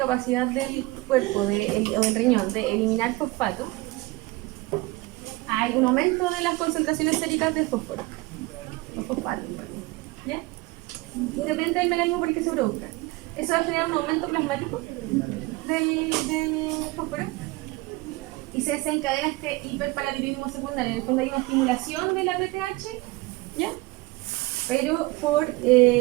del cuerpo o del riñón de eliminar fosfato, hay un aumento de las concentraciones séricas de fósforo. Los fosfatos, ¿ya? Y depende del mecanismo por el que se produzca. Eso va a generar un aumento plasmático del fósforo y se desencadena este hiperparatiroidismo secundario. En el fondo hay una estimulación de la PTH, ¿ya? Pero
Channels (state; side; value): quieter; left; 21.9 dB